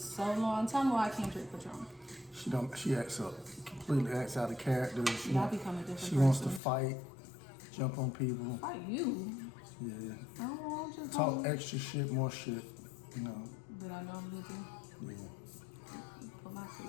long. Tell me why I can't drink Patron. She acts up, completely acts out of character. Y'all become a different She person. wants to fight, jump on people. Fight you? Yeah. I don't know, just Talk extra shit, more shit, you know. That I normally do. Yeah. Put my feet.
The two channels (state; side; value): drops out; right; at 6.6 s